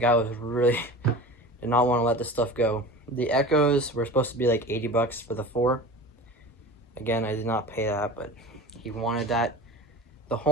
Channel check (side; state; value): both; normal; correlation 0.35